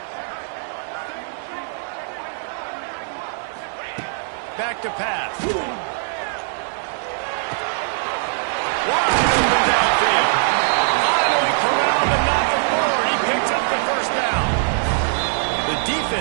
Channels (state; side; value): silent; left; digital silence